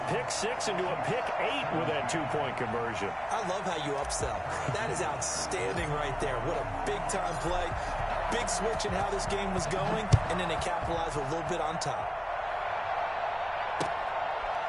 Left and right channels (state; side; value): identical; both; correlation 1.00